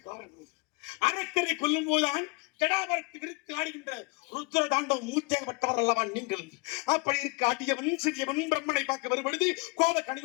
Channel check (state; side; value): quieter; right; 28.5 dB